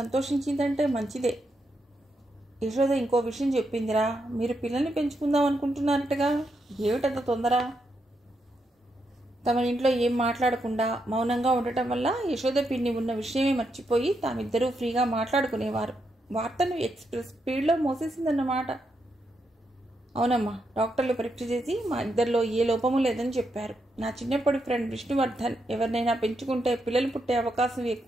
మంచిదే. యశోద ఇంకో విషయం చెప్పిందిరా, మీరు పిల్లల్ని పెంచుకుందాం అనుకుంటున్నారటగా, ఏమిటంత తొందర? తమ ఇంట్లో ఏం మాట్లాడకుండా మౌనంగా ఉండటం వల్ల యశోద పిన్ని ఉన్న విషయమే మర్చిపోయి తామిద్దరూ ఫ్రీగా మాట్లాడుకునేవారు. వార్తను ఎక్స్ప్రెస్ స్పీడ్లో మోసేసిందన్నమాట. అవునమ్మా, డాక్టర్లు పరీక్ష చేసి మా ఇద్దరిలో ఏ లోపము లేదని చెప్పారు. నా చిన్నప్పటి ఫ్రెండ్ విష్ణువర్ధన్ ఎవరినైనా పెంచుకుంటే పిల్లలు పుట్టే అవకాశం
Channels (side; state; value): both; normal; correlation 0.82